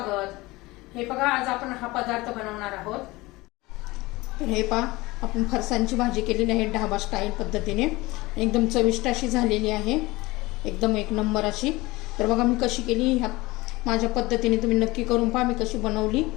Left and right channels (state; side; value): quieter; right; 21.1 dB